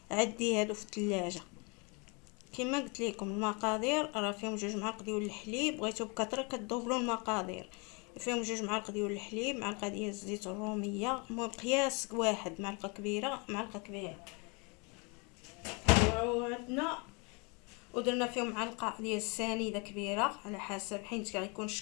عندي هادو في الثلاجه. كما قلت لكم المقادير راه فيهم 2 معالق ديال الحليب، بغيتو بكثره كتضوبلوا المقادير. فيهم 2 معالق ديال الحليب، معلقه ديال الزيت الروميه، المهم قياس واحد، معلقه كبيره. وعندنا ودرنا فيهم معلقه ديال السنيده كبيره على حسب، حيت غيكون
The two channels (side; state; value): right; quieter; 31.4 dB